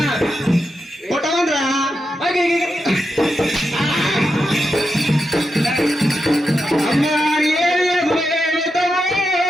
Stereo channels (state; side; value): normal; both; correlation 0.87